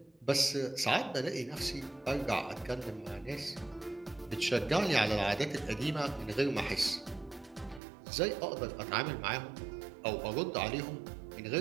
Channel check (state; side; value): drops out; left; at 7.8 s